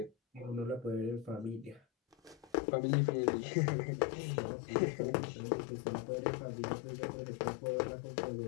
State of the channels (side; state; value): right; drops out; at 2.5 s